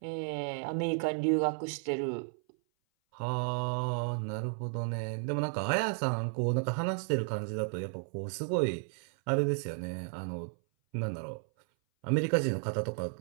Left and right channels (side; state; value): left; silent; 56 dB below the other